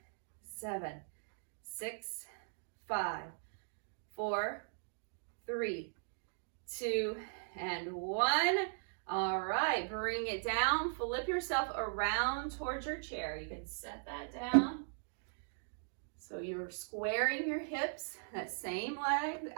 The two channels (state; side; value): silent; left; digital silence